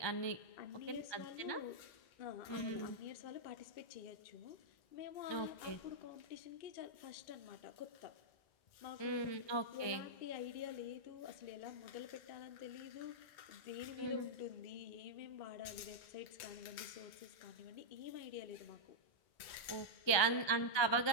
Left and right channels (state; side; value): late; right; 1.2 ms